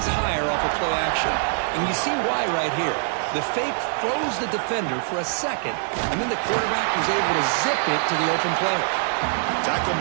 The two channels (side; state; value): left; silent; digital silence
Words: higher off of play action. And you see why right here. The fake froze the defender for a second, and then the quarterback was able to zip it to the open player. Tackle